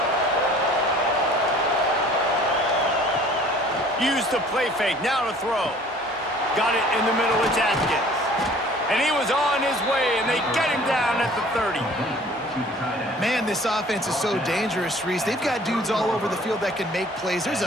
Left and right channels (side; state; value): both; normal; correlation 0.51